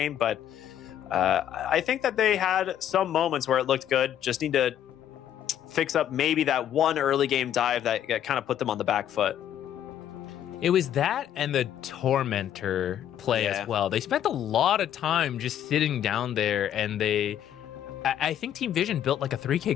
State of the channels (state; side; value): quieter; right; 10.6 dB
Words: But I think that they had some moments where it looked good. Just need to fix up maybe that one early game dive that kind of put them on the back foot. It was that and the Tormentor play as well. They spent a lot of time just sitting down there, and I think Team Vision built like a